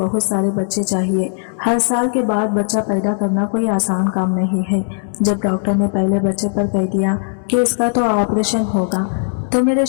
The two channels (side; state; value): right; silent; 66 dB below the other